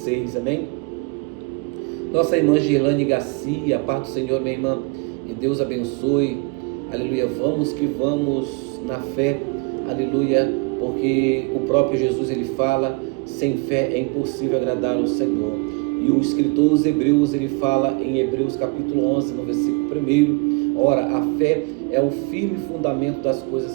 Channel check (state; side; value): quieter; left; 29.9 dB